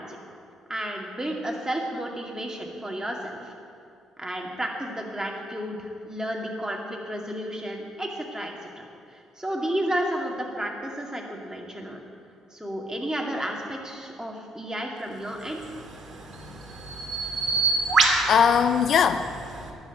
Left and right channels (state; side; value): normal; both; correlation 0.67